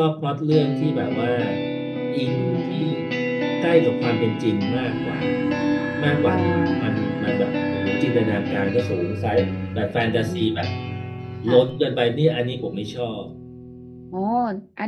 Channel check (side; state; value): both; identical; correlation 1.00